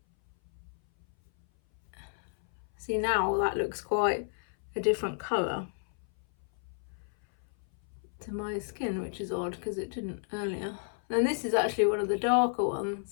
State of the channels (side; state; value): right; silent; 56 dB below the other